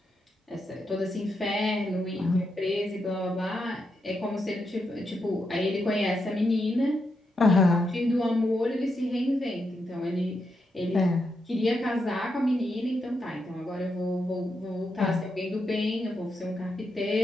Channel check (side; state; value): both; normal; correlation 0.84